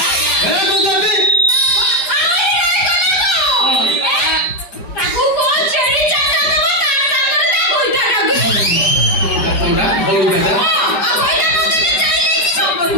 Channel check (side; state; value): right; late; 5.2 ms